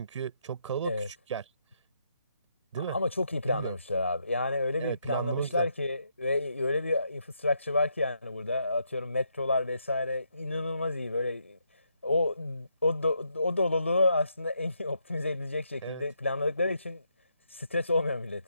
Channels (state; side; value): inverted; both; correlation -0.78